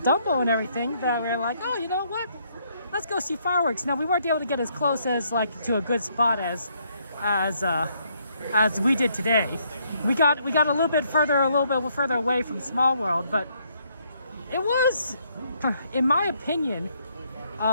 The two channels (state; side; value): inverted; both; correlation -0.71